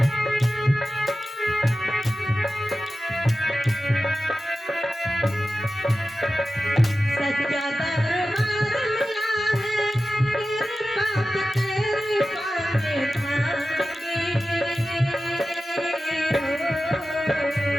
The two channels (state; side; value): normal; both; correlation 0.94